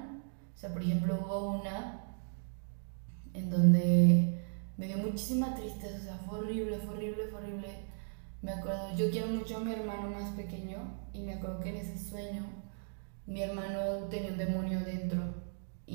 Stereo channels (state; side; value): silent; left; digital silence